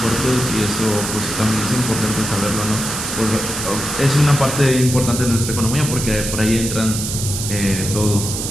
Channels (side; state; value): right; noise; hiss, 5 dB below the sound